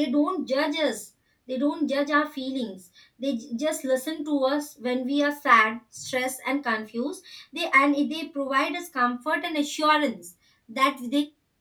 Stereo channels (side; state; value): both; identical; correlation 1.00